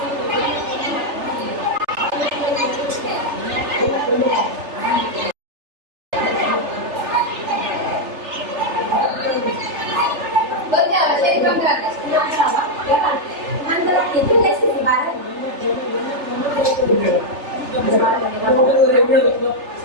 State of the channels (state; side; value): late; left; 3.4 ms